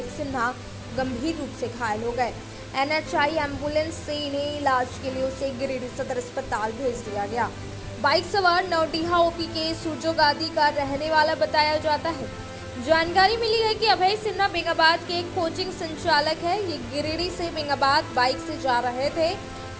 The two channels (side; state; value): both; identical; correlation 1.00